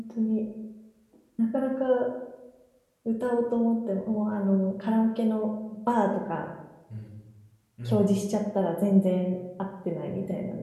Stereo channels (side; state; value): both; identical; correlation 1.00